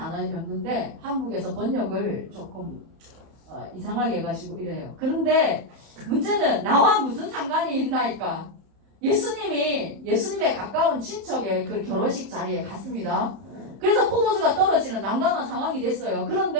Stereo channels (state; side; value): late; left; 31 ms